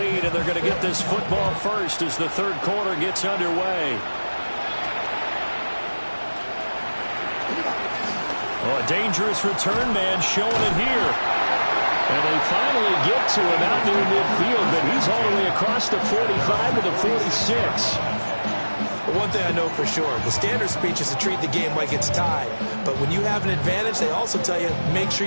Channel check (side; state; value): both; inverted; correlation -1.00